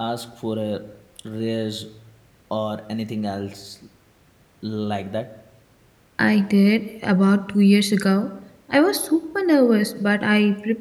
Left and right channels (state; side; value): identical; both; correlation 1.00